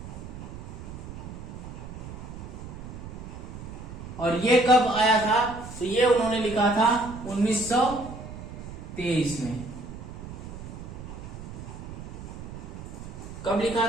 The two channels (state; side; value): noise; right; rumble, 11 dB below the sound